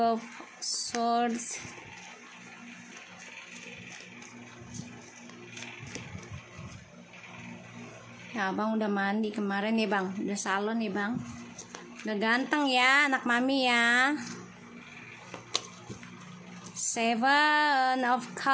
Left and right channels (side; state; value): both; identical; correlation 1.00